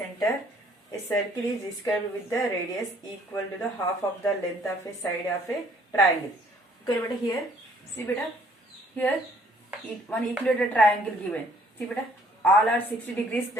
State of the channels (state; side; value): normal; both; correlation 0.61